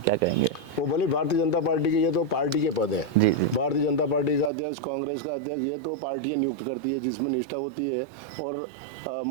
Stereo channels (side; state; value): left; drops out; at 4.5 s